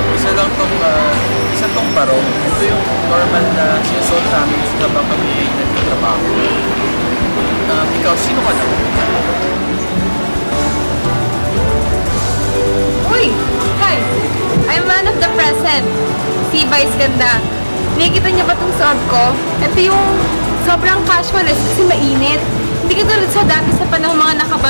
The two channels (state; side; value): inverted; both; correlation -1.00